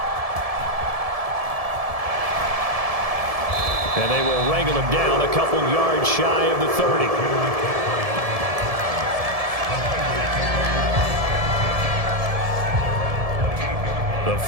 And they will wrangle him down a couple yards shy of the 30. The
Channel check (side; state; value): left; late; 1.7 ms